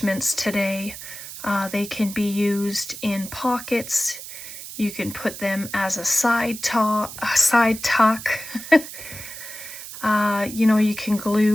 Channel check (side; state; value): right; noise; hiss, 11 dB below the sound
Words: today. They can be used in pockets. You can put them as a side tuck. You can